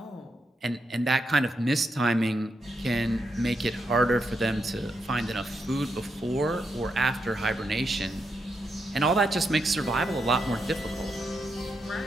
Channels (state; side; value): normal; both; correlation 0.82